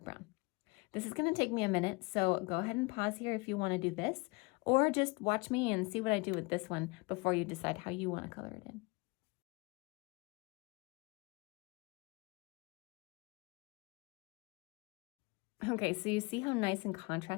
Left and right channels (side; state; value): right; quieter; 27.2 dB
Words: brown. This is gonna take me a minute, so go ahead and pause here if you wanna do this, or just watch me and see what I do with this one before you decide how you wanna color it in. Okay, so you see how nice and